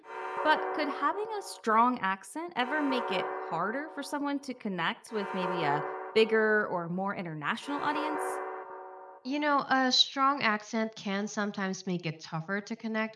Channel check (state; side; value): identical; both; correlation 1.00